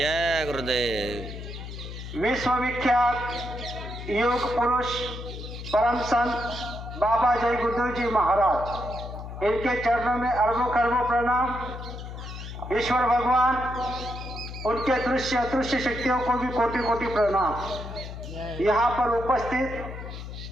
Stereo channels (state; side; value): noise; left; hum, 10 dB below the sound